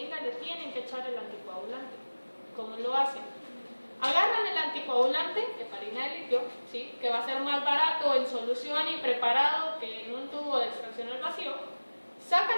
le tienen que echar el anticoagulante. ¿Cómo lo hacen? Agarran el anticoagulante, heparina de litio, ¿sí? Que va a ser más barato en solución y preparado que en un tubo de extracción al vacío,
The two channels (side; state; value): both; inverted; correlation -1.00